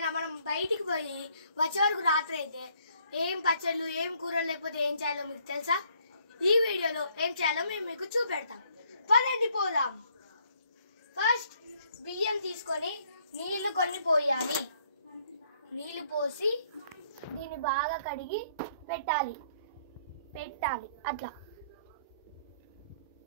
మనం బయటికి పోయి వచ్చే వరకు రాత్రి అయితే ఏం పచ్చళ్ళు ఏం కూరలు లేకపోతే ఏం చేయాలో మీకు తెలుసా? ఈ వీడియోలో ఏం చేయాలో మేము మీకు చూపెడతాం. పదండి పోదాం. ఫస్ట్ బియ్యం తీసుకొని నీళ్లు కొన్ని పోయాలి. నీళ్లు పోసి దీన్ని బాగా కడిగి పెట్టాలి అట్లా.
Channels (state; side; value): inverted; both; correlation -0.66